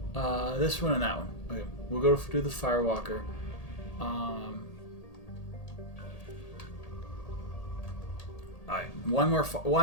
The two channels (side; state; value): right; late; 1.8 ms